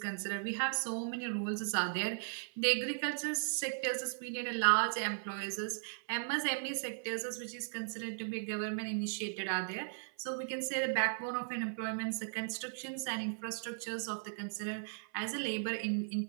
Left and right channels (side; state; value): left; silent; 53 dB below the other